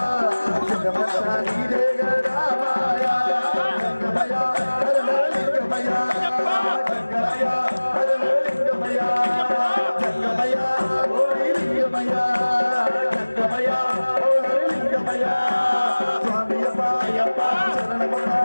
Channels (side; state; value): both; inverted; correlation -1.00